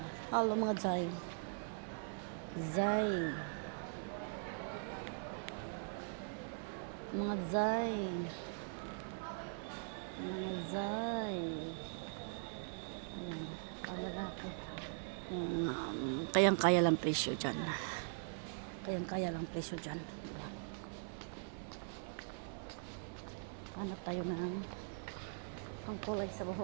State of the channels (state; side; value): silent; left; 50 dB below the other